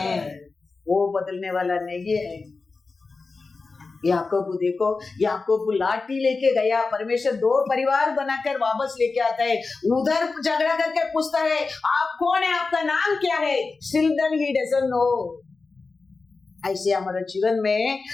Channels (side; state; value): right; quieter; 4.1 dB